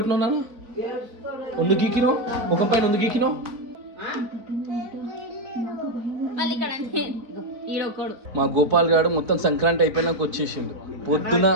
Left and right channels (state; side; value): late; left; 3.9 ms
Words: నాన్న, వందు గీకినావు ముఖం పైన వందు గీకినావు. మా గోపాల్ గారు మొత్తం సంక్రాంతి అయిపోయినాక వచ్చేసిండు పొద్దున.